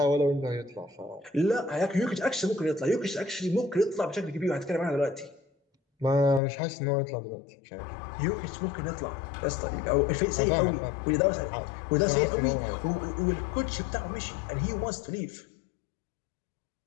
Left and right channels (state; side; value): drops out; right; at 6.4 s